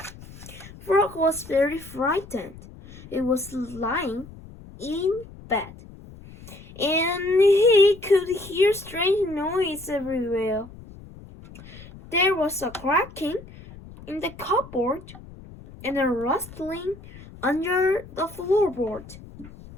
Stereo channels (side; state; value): left; noise; rumble, 18 dB below the sound